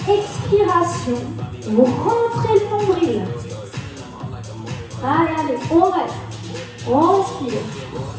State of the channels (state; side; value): identical; both; correlation 1.00